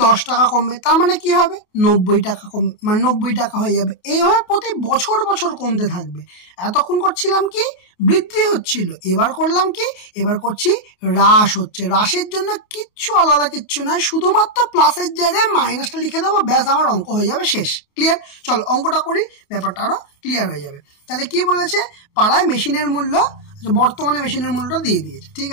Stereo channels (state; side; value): late; right; 28 ms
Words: 10 টাকা কমবে। তার মানে কি হবে? 90 টাকা কমবে, মানে 90 টাকা হয়ে যাবে। এইভাবে প্রতি বছর বছর কমতে থাকবে। এতক্ষণ করছিলাম কি, বৃদ্ধি হচ্ছিল, এবার করলাম কি, এবার করছি হ্রাস হচ্ছে। হ্রাসের জন্য কিচ্ছু আলাদা কিচ্ছু নয়, শুধুমাত্র প্লাসের জায়গায় মাইনাসটা লিখে দেবো, ব্যাস আমার অঙ্ক হয়ে যাবে শেষ। ক্লিয়ার? চলো অঙ্কটা করি, ব্যাপারটা আরো ক্লিয়ার হয়ে যাবে। তাহলে কি বলেছে, পাড়ায় মেশিনের মূল্য, বর্তমানে মেশিনের মূল্যটা দিয়ে দিয়েছে। ঠিক